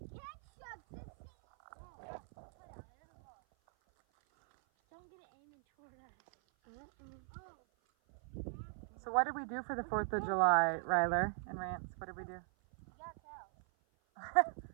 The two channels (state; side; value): silent; left; 51 dB below the other